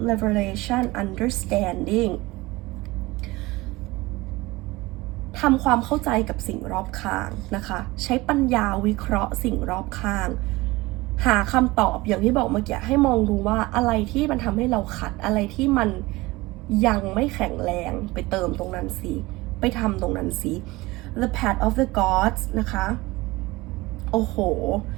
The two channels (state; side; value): quieter; left; 20.9 dB